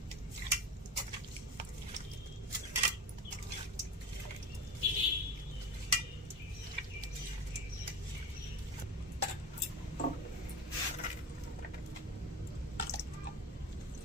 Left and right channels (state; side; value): normal; both; correlation 0.29